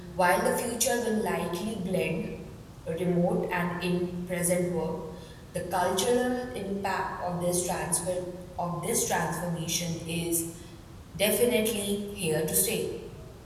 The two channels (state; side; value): identical; both; correlation 1.00